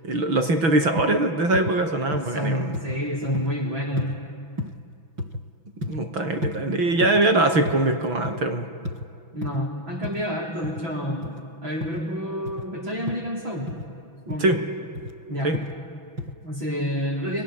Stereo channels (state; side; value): late; left; 6.1 ms